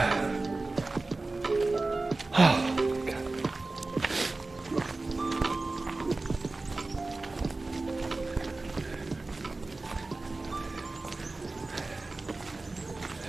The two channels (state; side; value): quieter; left; 3.3 dB